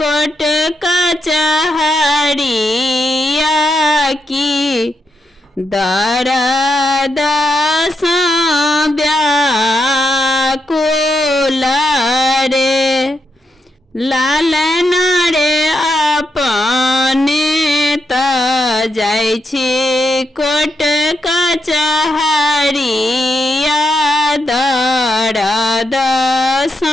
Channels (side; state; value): both; normal; correlation 0.83